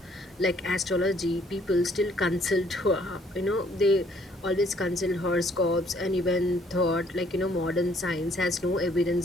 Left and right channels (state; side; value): normal; both; correlation 0.63